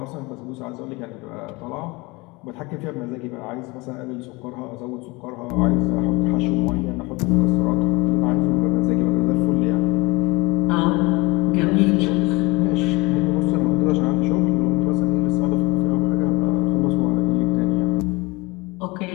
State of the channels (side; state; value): right; quieter; 24.9 dB